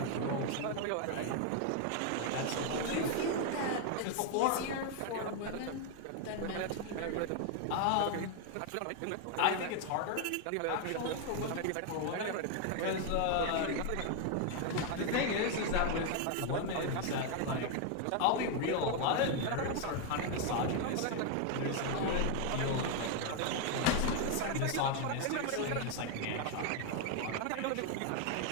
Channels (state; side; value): different; both; correlation 0.00